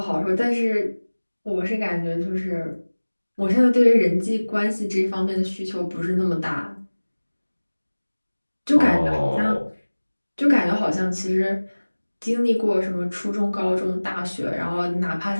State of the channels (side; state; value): both; inverted; correlation -1.00